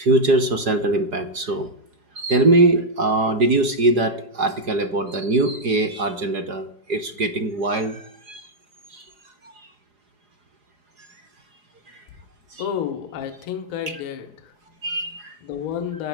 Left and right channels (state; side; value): late; left; 4.8 ms